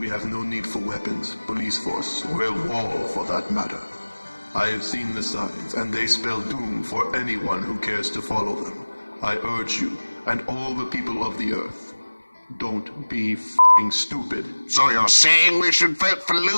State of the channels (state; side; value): inverted; both; correlation -1.00